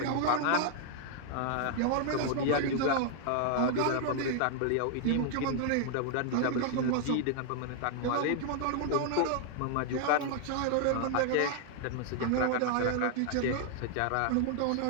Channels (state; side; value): different; both; correlation 0.00